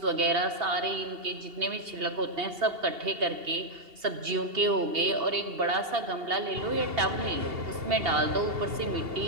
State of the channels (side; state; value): left; late; 2.8 ms